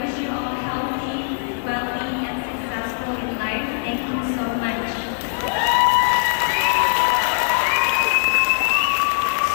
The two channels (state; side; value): silent; right; digital silence